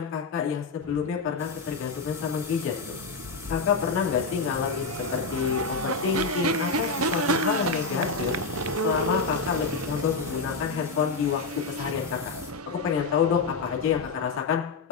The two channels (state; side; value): quieter; right; 4.2 dB